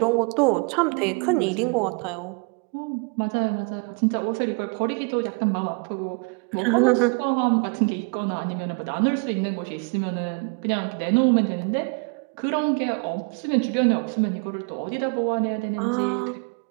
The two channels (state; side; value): quieter; left; 33.6 dB